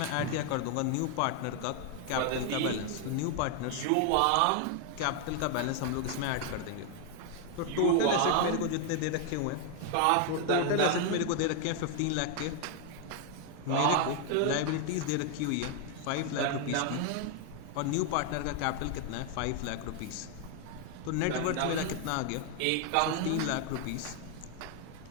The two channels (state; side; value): different; both; correlation 0.00